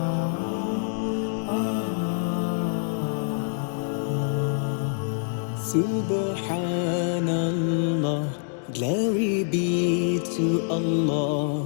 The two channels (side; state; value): right; silent; digital silence